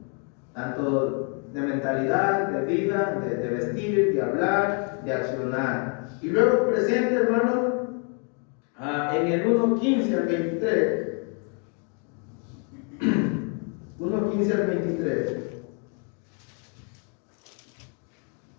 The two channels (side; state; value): right; quieter; 39.9 dB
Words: tanto de mentalidad, de vida, de vestir, de hablar, de accionar. Y luego presenta, hermano, en el 1:15 al 23. 1:15 al 23.